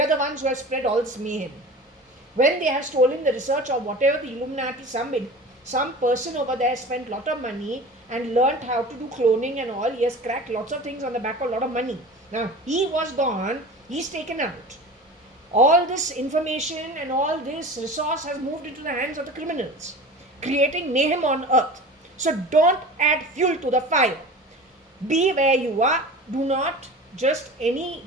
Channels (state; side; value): normal; both; correlation 0.36